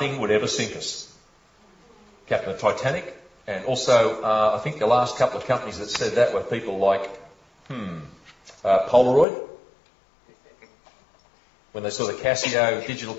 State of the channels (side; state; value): right; drops out; at 9.2 s